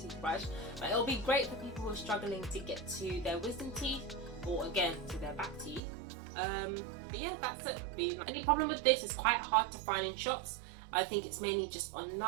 toothbrush, but it'll be great for people who are struggling to get to their wisdom teeth, or again to their back teeth. But yeah, that's it. The only problem with this is quite hard to find in shops. I think it's mainly just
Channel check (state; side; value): drops out; left; at 5.8 s